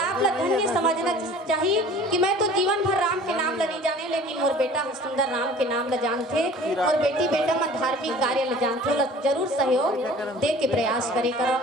आप ला धन्य समझना चाहिए कि मैं तो जीवन भर राम के नाम ला नहीं जाने, लेकिन मोर बेटा सुंदर राम के नाम ला जानते और बेटी बेटा मन धार्मिक कार्य ला जानते, ला जरूर सहयोग दे के प्रयास करे करो।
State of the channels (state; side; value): normal; both; correlation 0.46